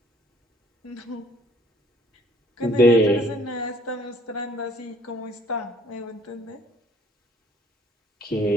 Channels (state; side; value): normal; both; correlation 0.58